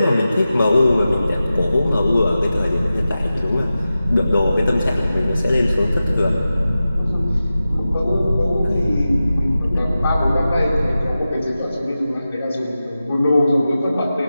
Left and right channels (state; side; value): inverted; both; correlation -0.93